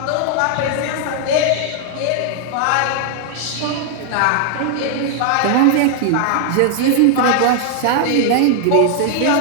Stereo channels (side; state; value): both; different; correlation 0.00